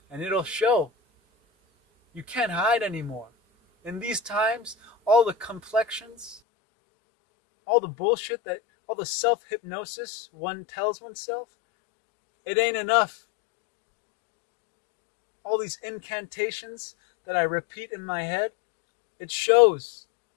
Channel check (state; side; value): drops out; right; at 6.4 s